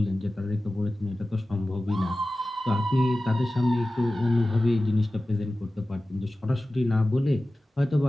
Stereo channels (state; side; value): normal; both; correlation 0.96